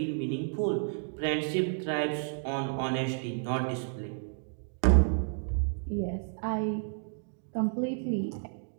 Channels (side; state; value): left; silent; 57 dB below the other